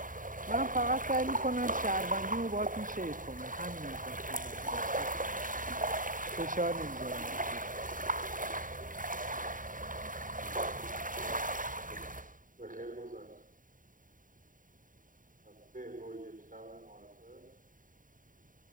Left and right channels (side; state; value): left; late; 0.39 ms